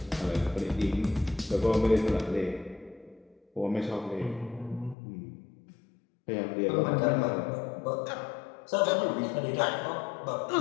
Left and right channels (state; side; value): drops out; right; at 5.0 s